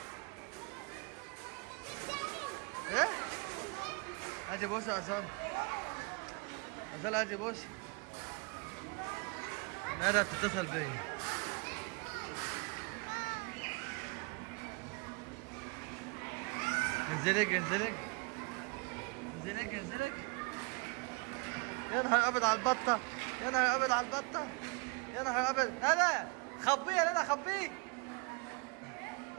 ايه؟ هاتي بص يا أصالة. أصالة هاتي بص. ندى بتتصل بيا. انزلك انزلك. انزلك انزلك. يا نهار أبيض على البطة. يا نهار أبيض على البطة. يا نهار أبيض. ندى خبيه يا ندى خبيه.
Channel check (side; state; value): left; quieter; 31.5 dB